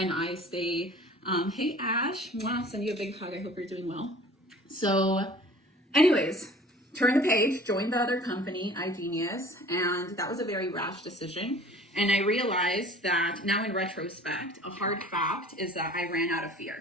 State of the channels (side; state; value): both; normal; correlation 0.47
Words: I stay, hey Ash, mwah, send you a big hug. I hope you're doing well. So anyways, turn the page, join the other company, iGenius, and that was a very rash decision. And I realized that now in retrospect, a hard fact is that I ran out of